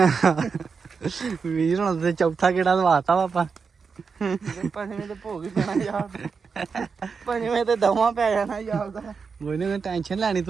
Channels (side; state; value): left; quieter; 5.4 dB